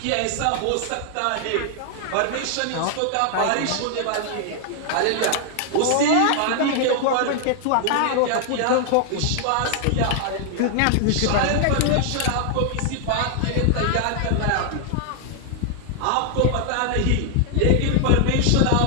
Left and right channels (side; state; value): both; different; correlation 0.00